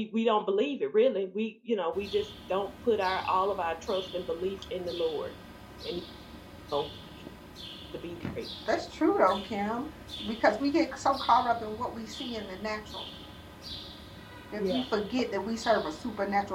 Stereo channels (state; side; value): identical; both; correlation 1.00